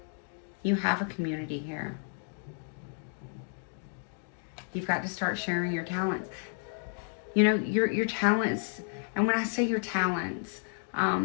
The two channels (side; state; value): right; silent; 57 dB below the other